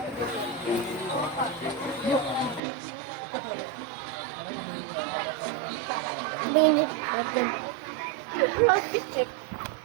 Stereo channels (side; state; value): left; drops out; at 2.6 s